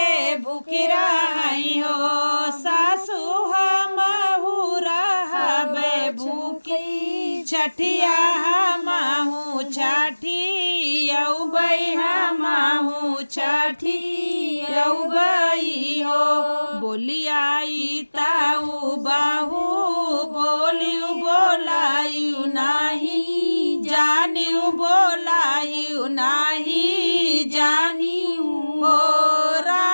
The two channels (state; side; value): inverted; both; correlation -1.00